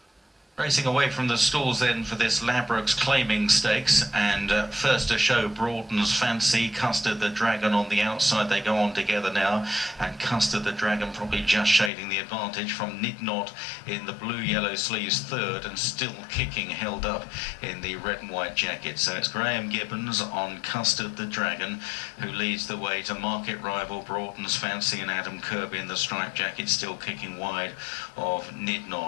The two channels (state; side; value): drops out; right; at 11.9 s